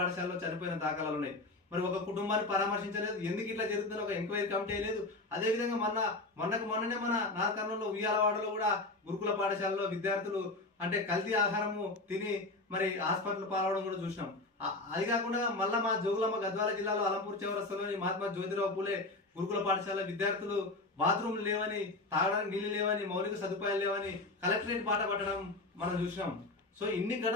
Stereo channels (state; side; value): quieter; right; 3.0 dB